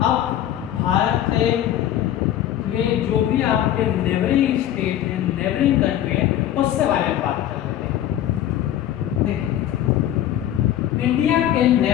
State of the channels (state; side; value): quieter; right; 11.9 dB